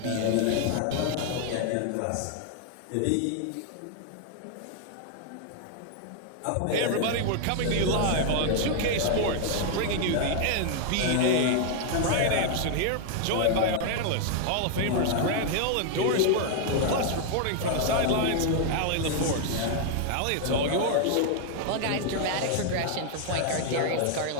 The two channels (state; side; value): different; both; correlation 0.00